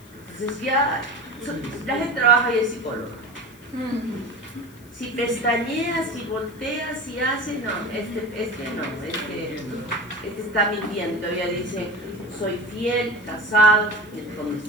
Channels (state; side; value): noise; left; hiss, 25 dB below the sound